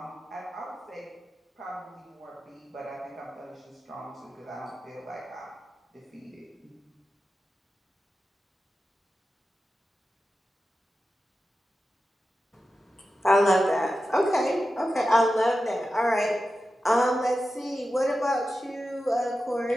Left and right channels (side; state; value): both; normal; correlation 0.92